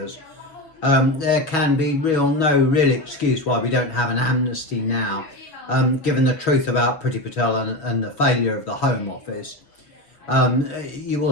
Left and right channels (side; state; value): right; late; 6.5 ms